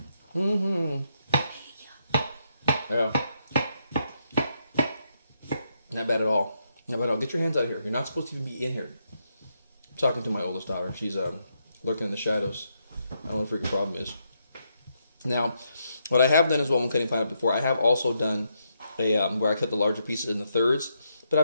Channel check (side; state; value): both; inverted; correlation -0.79